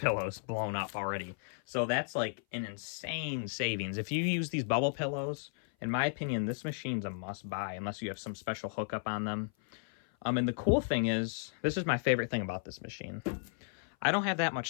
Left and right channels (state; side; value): silent; right; 55 dB below the other